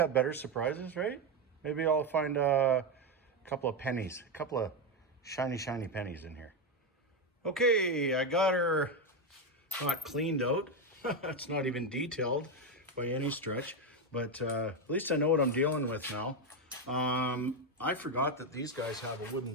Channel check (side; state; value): both; normal; correlation 0.09